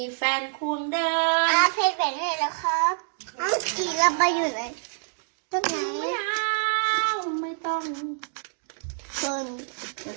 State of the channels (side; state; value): left; silent; digital silence